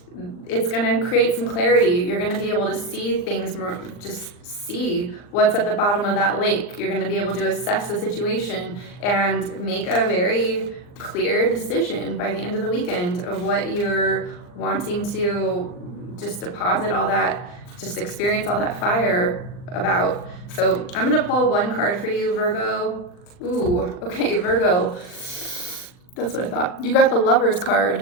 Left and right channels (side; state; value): right; late; 39 ms